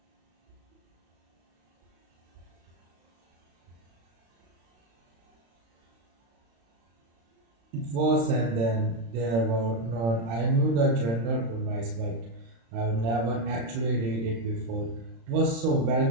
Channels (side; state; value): left; late; 35 ms